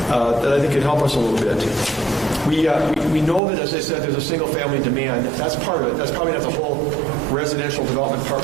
that I think can help us a little bit. We know that, as I said, there's a single-family demand. That's part of it. That's probably not the whole residential development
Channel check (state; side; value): drops out; left; at 3.4 s